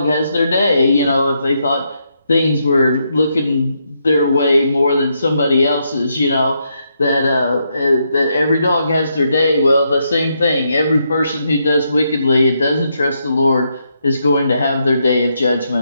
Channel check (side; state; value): both; inverted; correlation -0.79